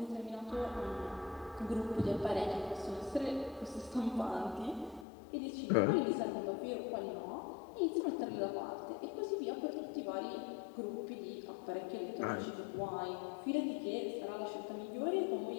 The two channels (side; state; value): right; drops out; at 5.1 s